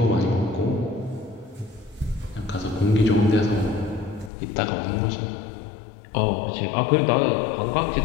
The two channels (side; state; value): right; drops out; at 4.3 s